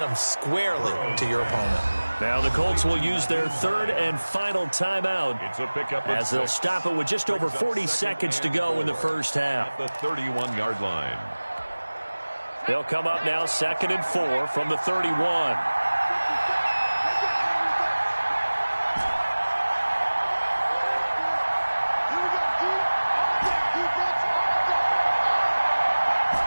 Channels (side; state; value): both; inverted; correlation -1.00